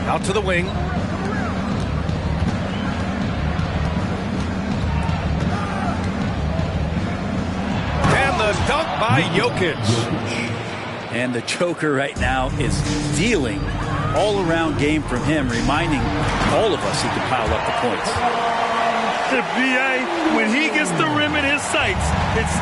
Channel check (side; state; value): both; identical; correlation 1.00